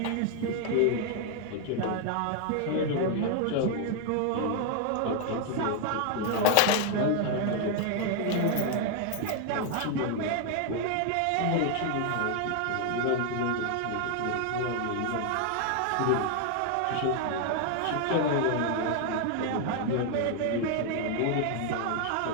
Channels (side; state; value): both; different; correlation 0.00